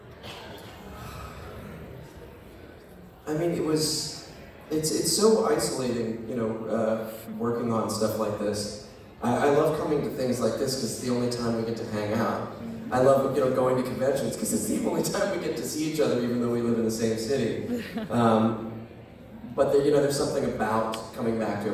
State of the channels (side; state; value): both; identical; correlation 1.00